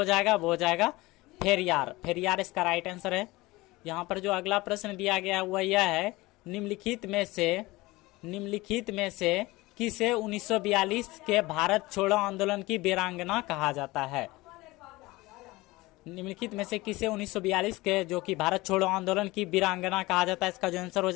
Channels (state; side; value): quieter; right; 20.7 dB